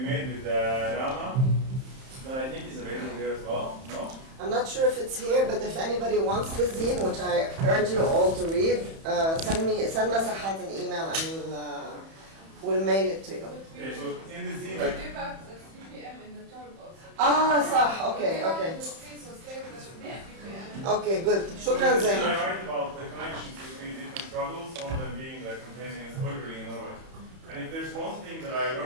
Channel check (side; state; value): left; late; 31 ms